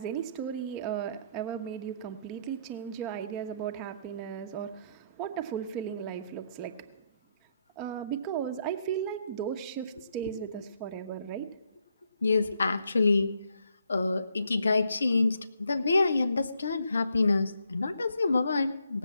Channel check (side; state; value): both; inverted; correlation -0.74